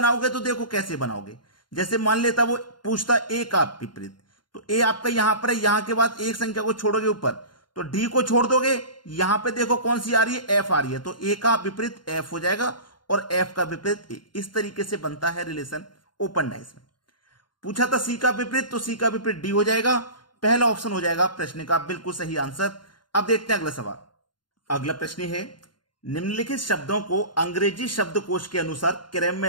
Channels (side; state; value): right; late; 0.71 ms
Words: तो देखो कैसे बनाओगे। जैसे मान लेता वो पूछता ए का विपरीत, तो ए आपका यहां पर है, यहां के बाद एक संख्या को छोड़ोगे ऊपर, तो डी को छोड़ दोगे, यहां पे देखो कौन सी आ रही है, एफ आ रही है, तो ए का विपरीत एफ हो जाएगा और एफ का विपरीत ए। इस तरीके से बनता है रिलेशन ओपन डाइस में। पूछा था सी का विपरीत, तो सी का विपरीत डी हो जाएगा। पहला ऑप्शन हो जाएगा प्रश्न का बिल्कुल सही आंसर। अब देखते हैं अगला सवाल। अगला प्रश्न है, निम्नलिखित शब्दों को अंग्रेजी शब्दकोश के अनुसार क्रम